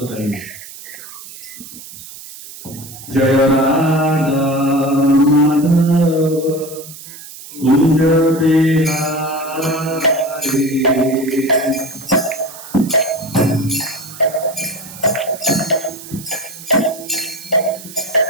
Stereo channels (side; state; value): right; noise; hiss, 15 dB below the sound